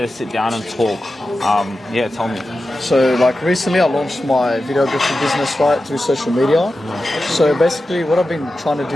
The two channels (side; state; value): both; normal; correlation 0.92